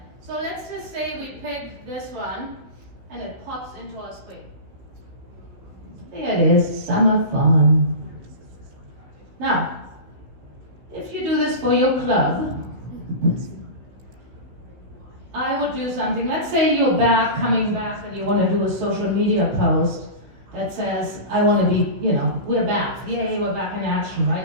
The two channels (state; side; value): late; left; 15 ms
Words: So let's just say we pick this one and it pops into our screen. There it is, summer fun. Now, if you do this for your club, I would do something. Let's say you're coming back, and you want to do a social media post that says, I want to be, we're back. Yay, we're back in action,